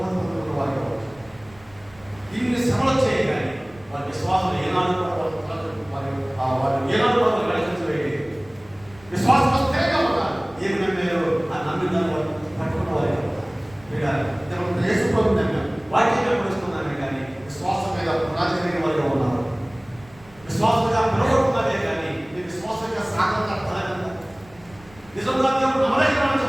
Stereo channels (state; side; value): noise; right; rumble, 25 dB below the sound